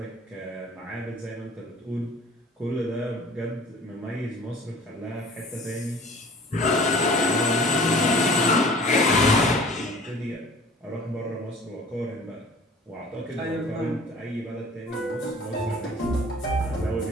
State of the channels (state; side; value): normal; both; correlation 0.47